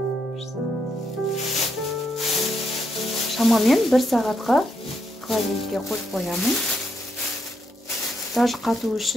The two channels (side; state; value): both; normal; correlation 0.78